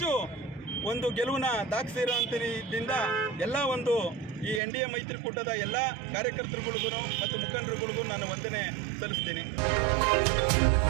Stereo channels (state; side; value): drops out; left; at 4.6 s